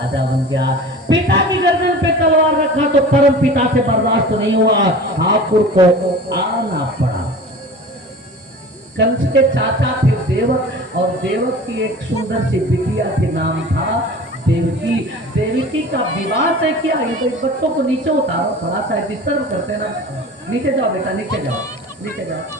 बन गया, पिता की गर्दन पे तलवार रखा तो परम पिता से बर्दाश्त नहीं हुआ, ठाकुर को आना पड़ा। कंस के चाचा थे देवक, और देवक की एक सुंदर सी बिटिया के नाम था देवकी। देवकी का विवाह तय किया। ये तो बच्चों को नीचे उतारो, थोड़ा सा डिस्टर्ब करते हैं ना, नीचे जाओ बेटा, नीचे जाओ, नीचे जाओ,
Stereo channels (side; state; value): both; normal; correlation 0.38